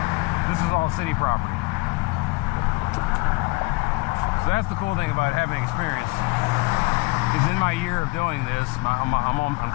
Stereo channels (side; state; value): right; quieter; 25.1 dB